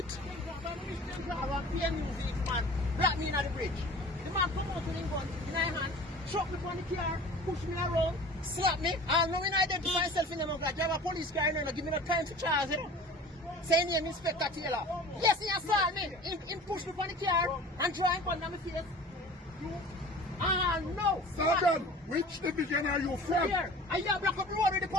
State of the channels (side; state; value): both; normal; correlation 0.42